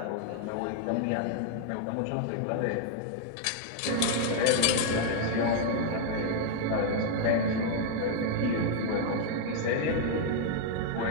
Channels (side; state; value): both; different; correlation 0.00